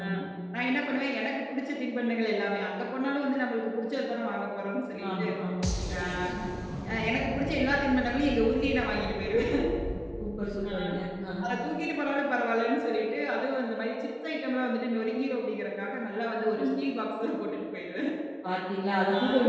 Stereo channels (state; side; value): identical; both; correlation 1.00